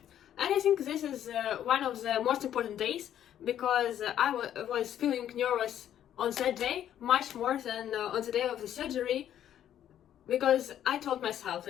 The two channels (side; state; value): right; quieter; 10.7 dB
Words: And I think this is one of the most important days, because I was feeling nervous on that day much more than on the day of the surgery, because I told myself